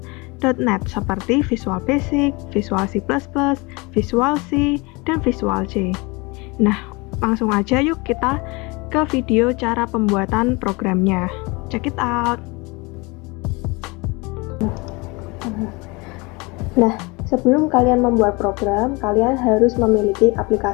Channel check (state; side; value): quieter; right; 26.3 dB